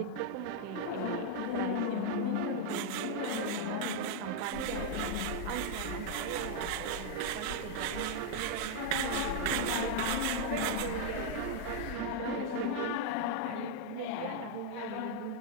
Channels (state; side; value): different; both; correlation 0.00